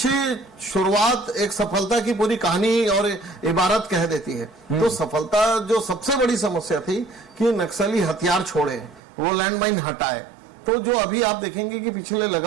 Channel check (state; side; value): drops out; left; at 9.0 s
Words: शुरुआत एक सफलता की पूरी कहानी और इबारत कह देती है। तो सफलता, जो सबसे बड़ी समस्या थी कि नक्सली हथियार छोड़े, वो लैंडमाइन हटाए। तो जो अभी आप देखेंगे कि पिछले